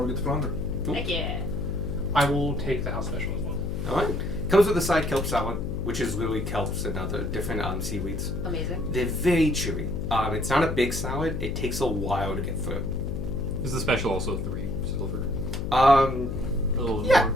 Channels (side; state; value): left; noise; hum, 4 dB below the sound